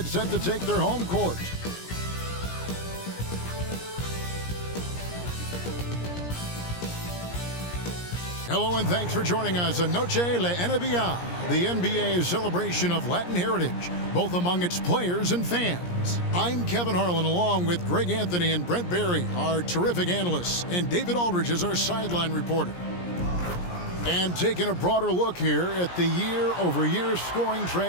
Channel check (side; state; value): right; late; 17 ms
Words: set to take their home court. Hello and thanks for joining us on Noche la NBA, the NBA's celebration of Latin heritage, both among its players and fans. I'm Kevin Harlan along with Greg Anthony and Brent Barry, our terrific analysts, and David Aldridge is our sideline reporter. And taking a broader look here at the year-over-year scoring